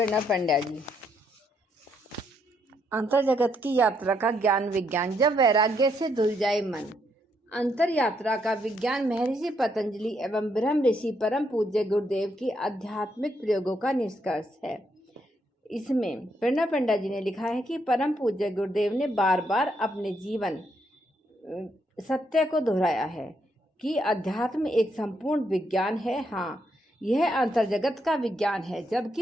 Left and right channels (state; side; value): normal; both; correlation 0.76